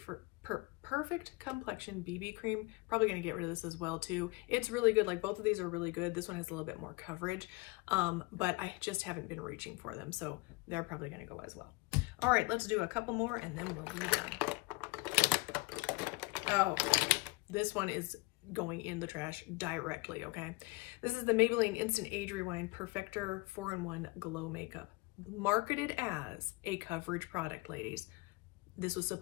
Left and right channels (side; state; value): right; quieter; 25.0 dB